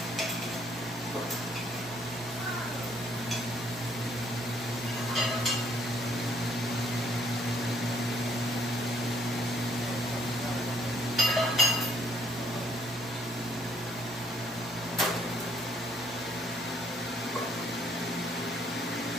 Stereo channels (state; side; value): normal; both; correlation 0.65